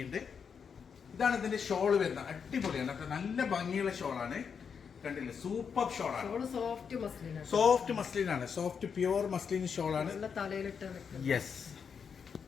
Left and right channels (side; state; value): right; quieter; 6.5 dB